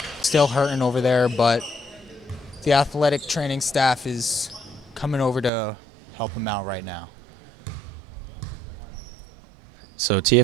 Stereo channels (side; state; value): left; drops out; at 5.5 s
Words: still hurting over there, but the athletic training staff is coming over to help him out right now. So